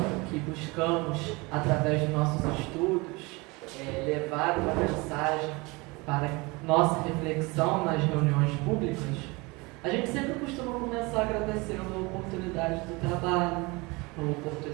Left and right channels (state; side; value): quieter; left; 25.4 dB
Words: que buscamos, através dos nossos estudos, levar uma mensagem para nossa reflexão nas reuniões públicas, a gente sempre costuma começar agradecendo a oportunidade do trabalho, a